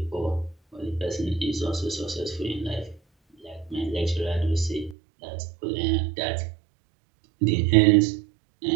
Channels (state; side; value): drops out; left; at 5.0 s